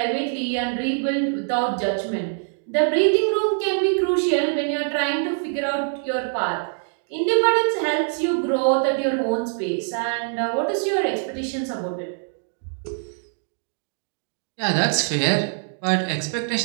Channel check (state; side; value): silent; left; digital silence